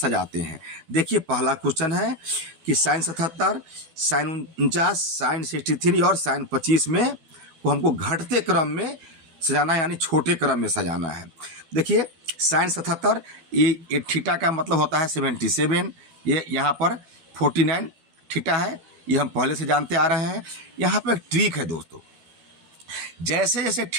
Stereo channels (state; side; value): late; left; 12 ms